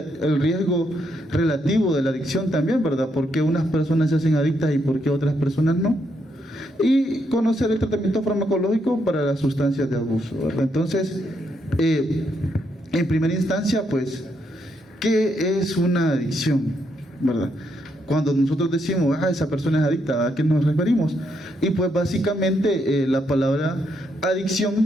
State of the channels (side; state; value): both; normal; correlation 0.77